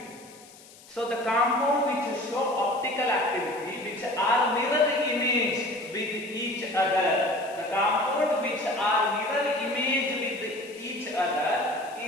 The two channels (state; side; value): noise; left; hiss, 22 dB below the sound